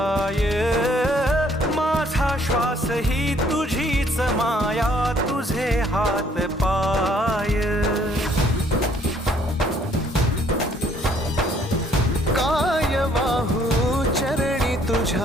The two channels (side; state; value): both; normal; correlation 0.63